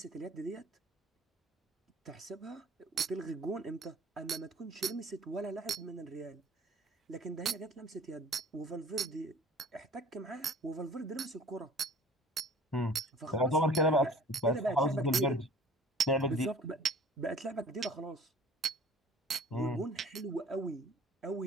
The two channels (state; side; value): normal; both; correlation 0.47